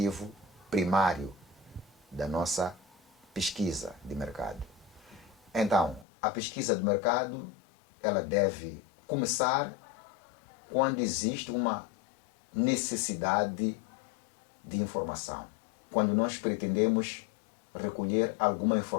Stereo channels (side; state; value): right; drops out; at 6.1 s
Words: primário da nossa pesquisa de mercado. Então, a pesquisa de mercado, ela deve começar quando existe uma necessidade de informação. Quando nós pretendemos recolher alguma